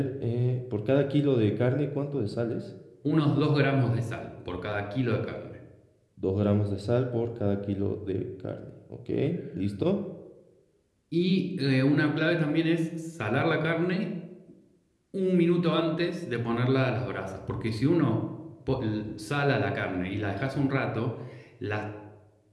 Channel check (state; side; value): identical; both; correlation 1.00